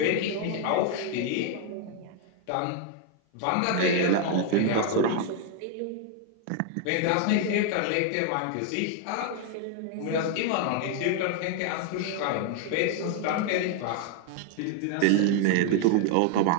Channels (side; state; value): both; different; correlation 0.00